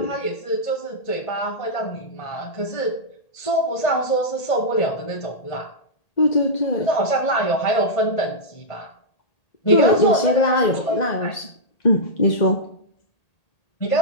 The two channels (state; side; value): late; right; 1.8 ms